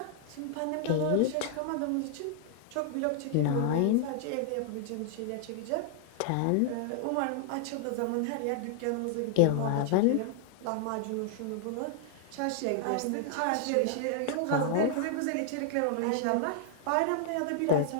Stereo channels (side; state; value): both; different; correlation 0.00